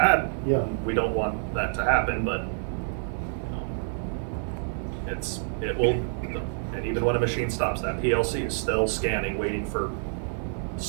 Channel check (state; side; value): silent; left; digital silence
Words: Yeah. We don't want that to happen, but it will, and even when a machine stops, that PLC is still scanning, waiting for